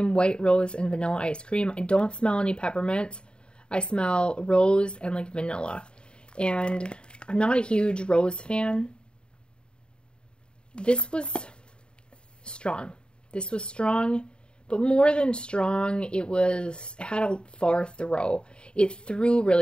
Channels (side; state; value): right; late; 0.051 ms